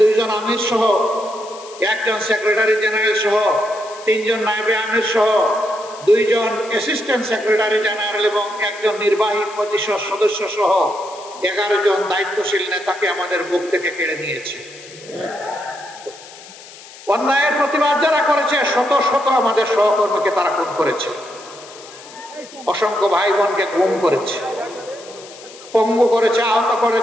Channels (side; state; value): left; noise; hiss, 19 dB below the sound